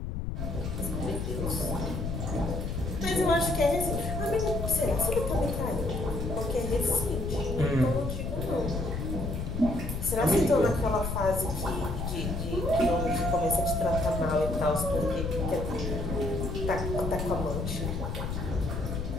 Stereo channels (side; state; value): left; noise; rumble, 3 dB below the sound